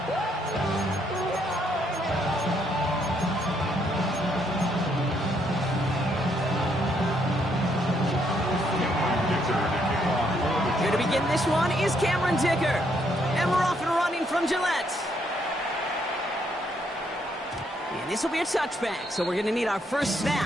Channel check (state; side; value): normal; both; correlation 0.73